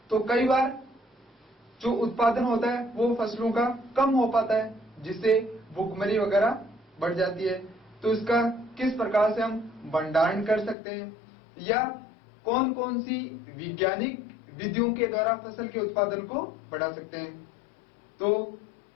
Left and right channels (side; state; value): right; drops out; at 10.8 s